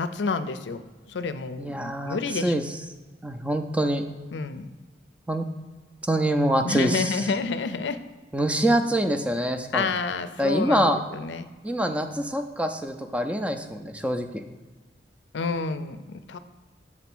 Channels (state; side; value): normal; both; correlation 0.63